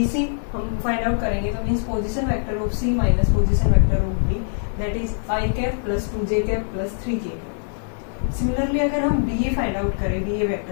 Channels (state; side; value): silent; right; digital silence